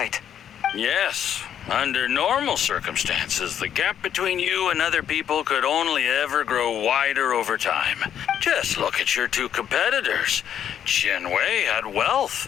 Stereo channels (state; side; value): quieter; right; 9.4 dB